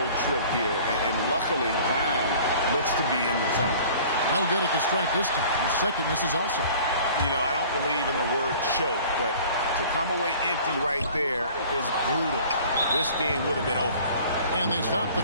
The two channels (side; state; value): both; inverted; correlation -0.47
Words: trip here. And luckily, Brown looks to be in the zone. No good at the stripe this time. The second misses also. You know, I don't believe in the word choke, but to come away empty right there is brutal. This game would have been over. And they stop